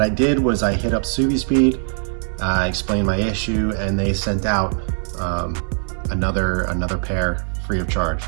I did was I hit up Subispeed, explained my issue, and they sent out another pair free of charge,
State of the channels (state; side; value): silent; left; digital silence